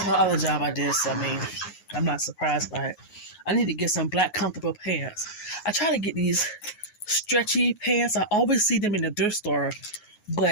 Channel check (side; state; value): right; late; 9.6 ms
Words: The other job I did, so I mean, I'm not surprised by it. I need to get some black comfortable pants. I try to get these stretchy pants. I always see them in the thrift store,